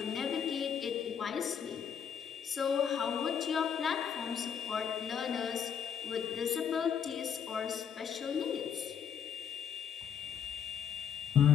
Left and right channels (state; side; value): quieter; right; 8.0 dB